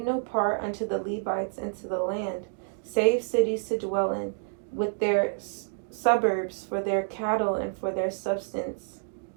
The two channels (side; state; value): left; silent; digital silence